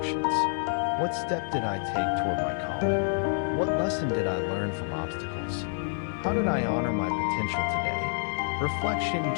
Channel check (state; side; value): silent; right; digital silence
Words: What step did I take toward my calling? What lesson did I learn from obstacles? How did I honor my potential today? Reflection